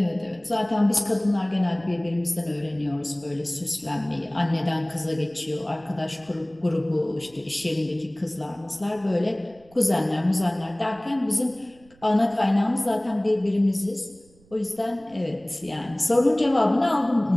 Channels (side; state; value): right; noise; rumble, 28 dB below the sound